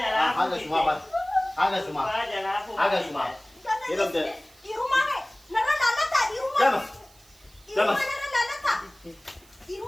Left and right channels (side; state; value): right; noise; hiss, 27 dB below the sound